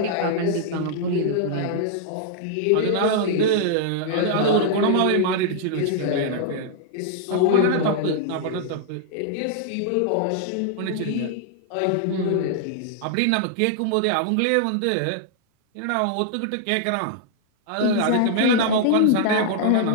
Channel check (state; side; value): different; both; correlation -0.01